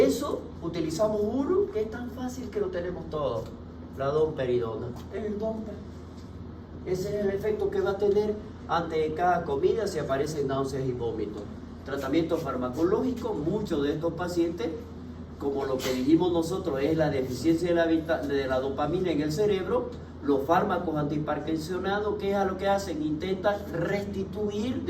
eso utilizamos uno que es tan fácil que lo tenemos todos, la domperidona, el domper. Ese es el efecto que va a tener ante cada comida si aparecen náuseas y vómitos. tratamiento farmacológico, muchos de estos pacientes, como lo que dijimos nosotros es la deficiencia de la dopamina en el cerebro, los fármacos antiparkinsonados, ¿qué es lo que hacen? Intentan restituir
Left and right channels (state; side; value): identical; both; correlation 1.00